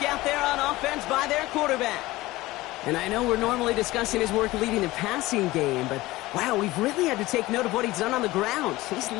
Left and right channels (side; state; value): right; quieter; 18.8 dB